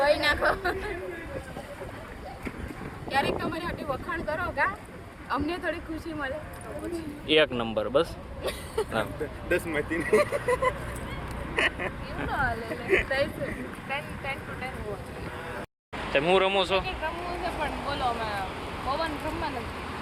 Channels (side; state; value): both; identical; correlation 1.00